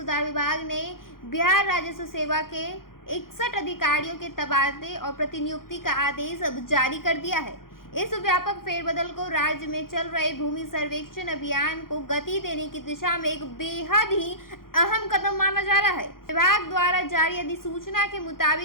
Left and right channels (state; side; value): late; right; 0.91 ms